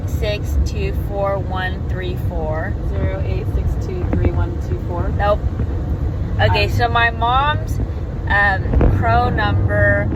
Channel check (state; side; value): identical; both; correlation 1.00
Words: 6, 2, 4, 1, 3, 4. Nope. Okay, so my mom's crow number